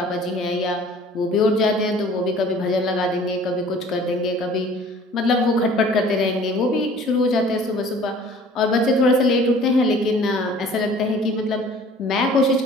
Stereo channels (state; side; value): normal; both; correlation 0.50